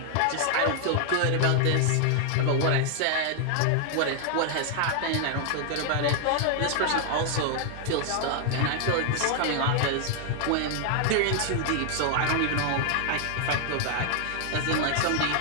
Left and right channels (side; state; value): both; different; correlation 0.00